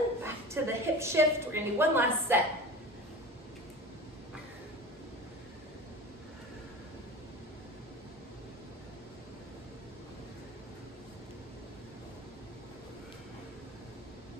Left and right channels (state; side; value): normal; both; correlation 0.35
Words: Back to the hip shift. We're gonna do one last set.